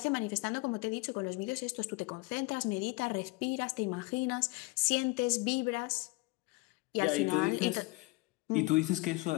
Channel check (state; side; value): quieter; right; 24.2 dB